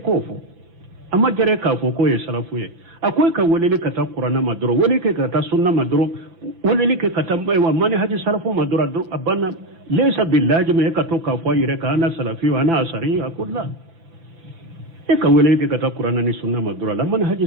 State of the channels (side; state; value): left; late; 6.0 ms